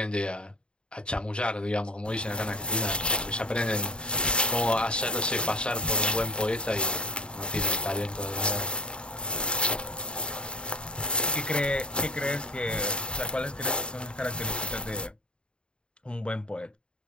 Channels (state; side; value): late; right; 0.052 ms